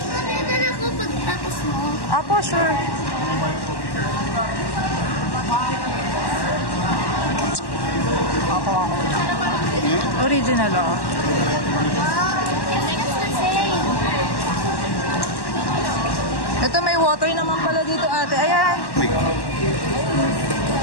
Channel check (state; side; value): late; right; 1.1 ms